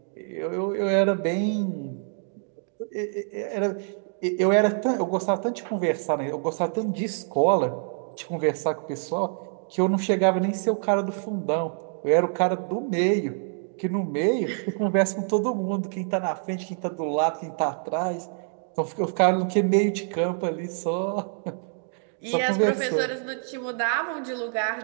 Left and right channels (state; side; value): silent; left; 61 dB below the other